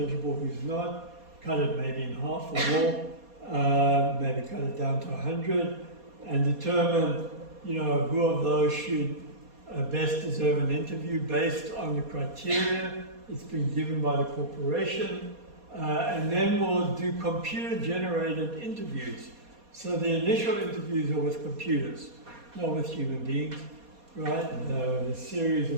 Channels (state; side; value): late; left; 4.2 ms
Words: who's not, cut it maybe in half or more, maybe cut it down to 100, and determine, who of those should best deserve an interview based on the criteria it's been given by the corporation, and then we'll do computer-generated interviews. So the initial interviews are with computers, not with human beings, right? A series